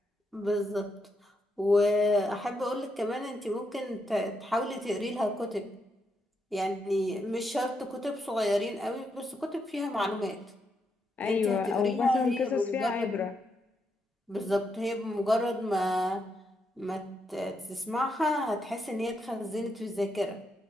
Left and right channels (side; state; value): both; normal; correlation 0.81